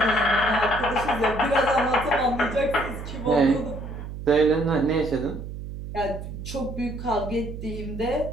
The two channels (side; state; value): right; noise; hum, 9 dB below the sound